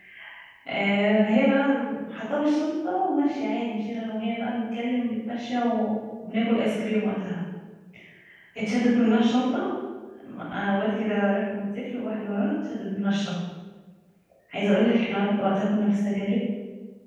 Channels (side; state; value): both; identical; correlation 1.00